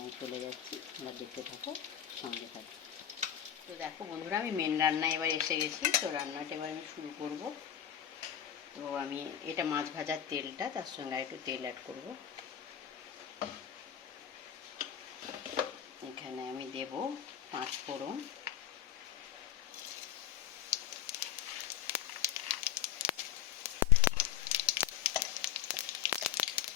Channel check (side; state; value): right; quieter; 10.3 dB